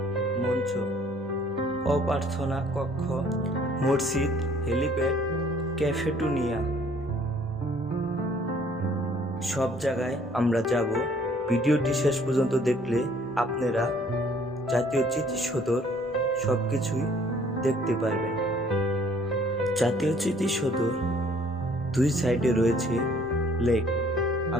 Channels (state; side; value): normal; both; correlation 0.59